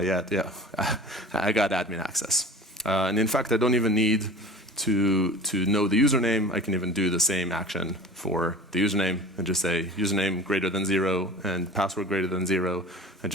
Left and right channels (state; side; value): normal; both; correlation 0.38